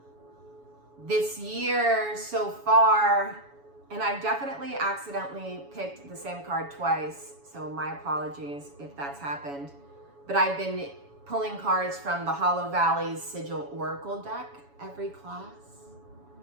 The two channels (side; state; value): left; late; 7.1 ms